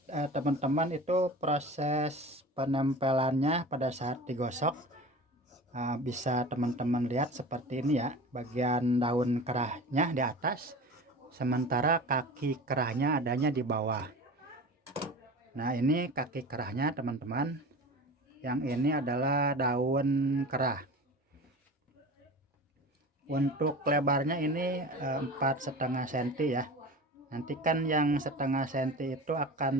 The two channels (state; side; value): normal; both; correlation 0.35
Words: teman-teman itu proses penempelannya pada saat digosok bisa teman-teman lihat seperti ini ya, bagian daun kerahnya di atas, sementara kaki kerahnya adanya di bawah. Nah ini kaki kerahnya teman-teman, yang ini adalah daun kerah. Untuk lebarnya ini 4,5 cm ya. Nanti kan yang 1/2 cm itu